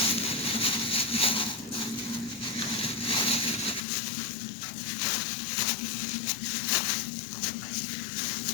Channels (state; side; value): drops out; right; at 3.8 s